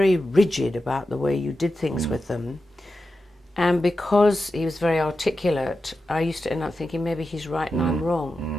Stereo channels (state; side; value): normal; both; correlation 0.91